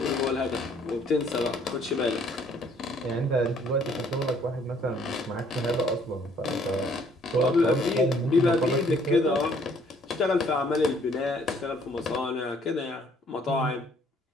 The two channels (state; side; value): normal; both; correlation 0.62